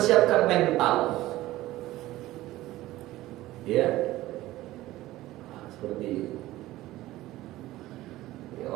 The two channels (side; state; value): left; quieter; 16.5 dB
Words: mental. Ya, seperti itu. Ya,